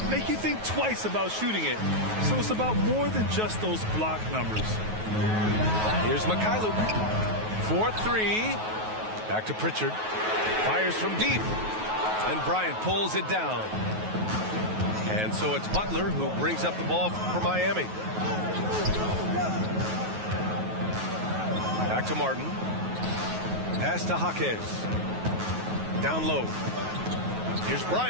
make you think twice about shooting it. So it's about more than just those block numbers. Here's Mikhailuk. 4-3. Back to Pritchard. Fires from deep. And Bryant pulls it down. And so it's Butler who brings up the ball for Miami. Back to Martin. Pass to Jaquez. Down low. Here's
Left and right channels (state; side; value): late; left; 9.3 ms